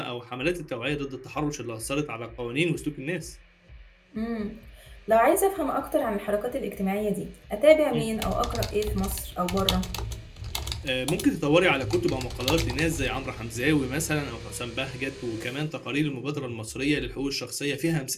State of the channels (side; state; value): both; identical; correlation 1.00